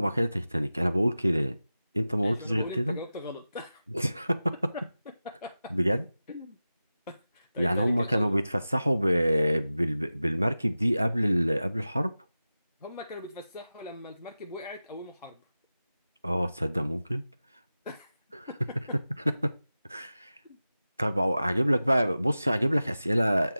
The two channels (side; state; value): both; inverted; correlation -0.95